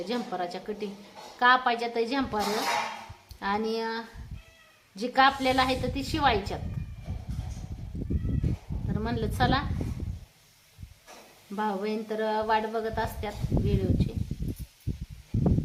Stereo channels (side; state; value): both; identical; correlation 1.00